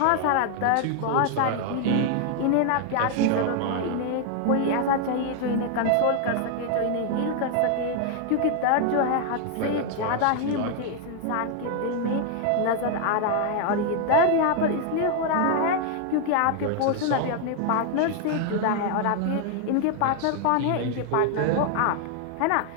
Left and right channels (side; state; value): both; different; correlation 0.00